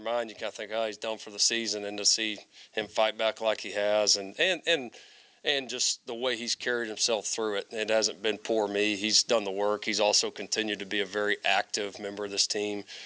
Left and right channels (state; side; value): identical; both; correlation 1.00